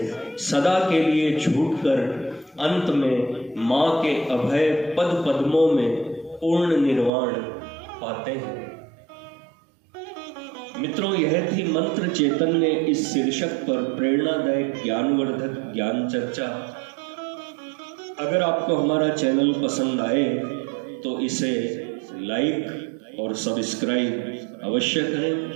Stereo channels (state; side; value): drops out; left; at 7.1 s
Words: सदा के लिए छूटकर अंत में माँ के अभय पद पद्मों में पूर्ण निर्वाण पाते हैं। मित्रों, यह थी मंत्र चैतन्य इस शीर्षक पर प्रेरणादायक ज्ञानवर्धक ज्ञान चर्चा। अगर आपको हमारा चैनल पसंद आए तो इसे लाइक और सब्सक्राइब अवश्य करें।